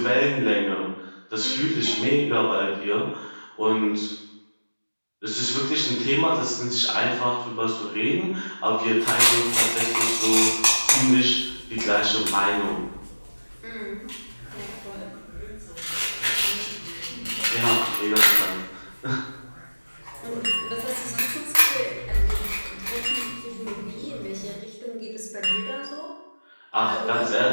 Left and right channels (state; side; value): inverted; both; correlation -1.00